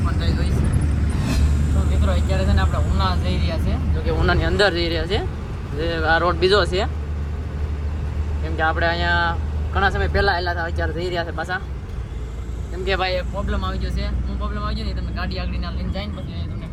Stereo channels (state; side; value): identical; both; correlation 1.00